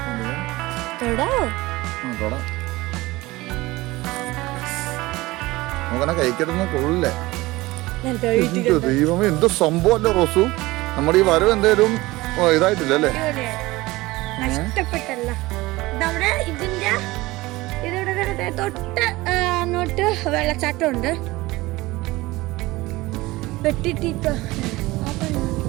തൊടാവോ? നമുക്കങ്ങനെ കഴിക്കരുന്ന് കൊള്ളില്ലേ? ദൈവമേ എന്ത് സംഭവല്ലേ റോസു. നമ്മുടെ ഈ വരവ് എന്തേലും ഇതായിട്ടില്ല അല്ലേ? നഷ്ടപ്പെട്ടല്ല. നമ്മുടെ ഇതിന്റെ ഇതിവിടെ തൊട്ട് അങ്ങോട്ട് വെള്ളച്ചാട്ടം ഉണ്ട്. വെട്ടിട്ടിട്ട്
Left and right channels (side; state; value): left; quieter; 20.0 dB